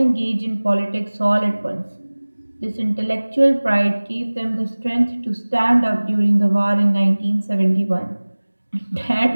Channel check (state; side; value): inverted; both; correlation -1.00